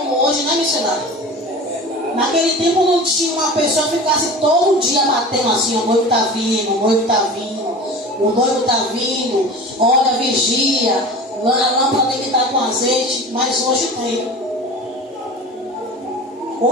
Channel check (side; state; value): both; normal; correlation 0.35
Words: hoje, né, missionário? Naquele tempo não tinha uma pessoa que ficasse todo dia batendo assim: o noivo está vindo, o noivo está vindo, o noivo está vindo, olha, vigia, a lâmpada tem que estar com azeite. Mas hoje tem.